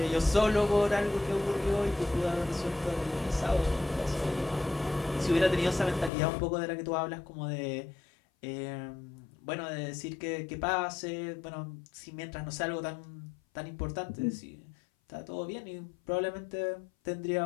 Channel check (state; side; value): drops out; right; at 6.1 s